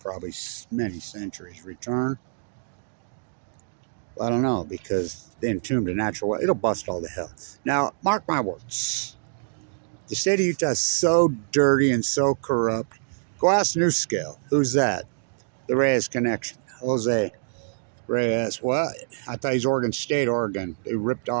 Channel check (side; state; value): left; silent; digital silence